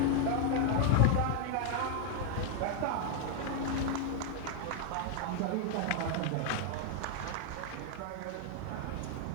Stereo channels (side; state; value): both; different; correlation 0.00